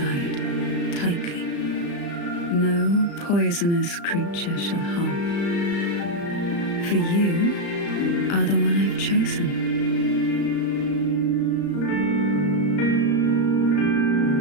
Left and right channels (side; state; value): right; late; 35 ms